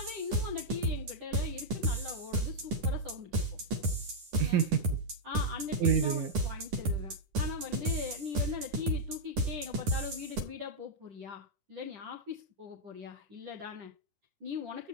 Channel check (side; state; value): left; late; 10 ms